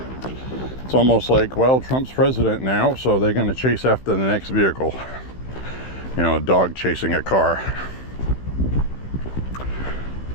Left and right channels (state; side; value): late; right; 15 ms